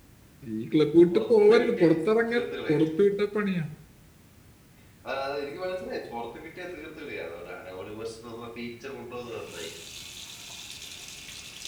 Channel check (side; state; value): both; identical; correlation 1.00